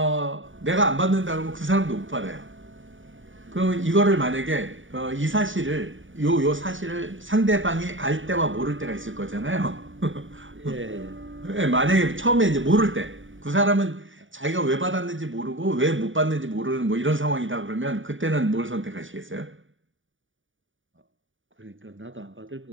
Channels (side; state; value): left; late; 0.57 ms